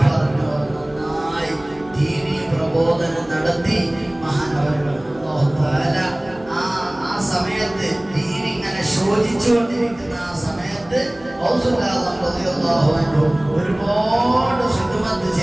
പറഞ്ഞോവർ, നന്നായി ദീനീ പ്രബോധനം നടത്തി മഹാനവരുകൾ. ആ സമയത്ത് ദീൻ ഇങ്ങനെ ശോധിച്ചുകൊണ്ടിരിക്കുന്ന ആ സമയത്ത് ഒരുപാട് ഖിദ്മത്ത്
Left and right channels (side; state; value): right; noise; hum, 24 dB below the sound